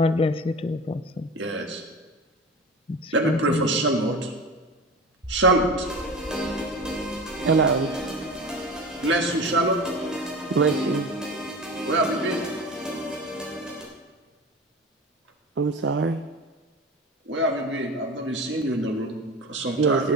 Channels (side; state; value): both; normal; correlation 0.32